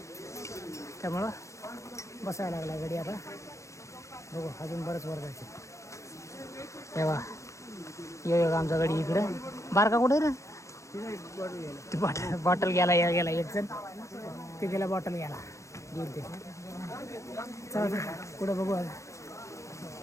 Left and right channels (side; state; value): right; late; 0.15 ms